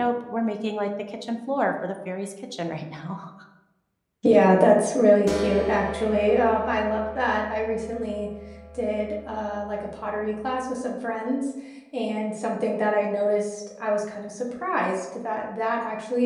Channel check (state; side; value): identical; both; correlation 1.00